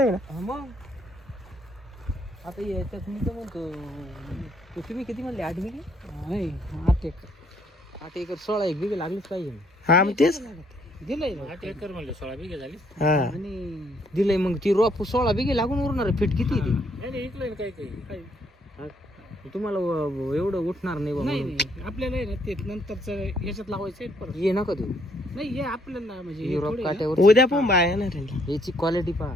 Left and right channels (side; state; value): both; normal; correlation 0.68